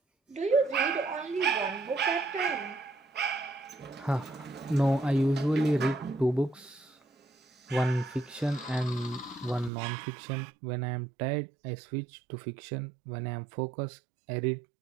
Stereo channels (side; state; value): left; drops out; at 9.7 s